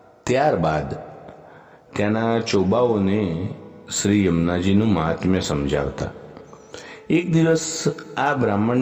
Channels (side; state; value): both; identical; correlation 1.00